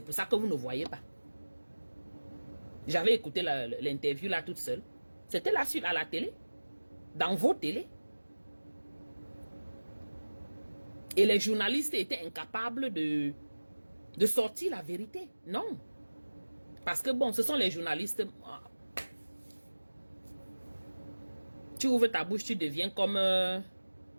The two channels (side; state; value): both; inverted; correlation -1.00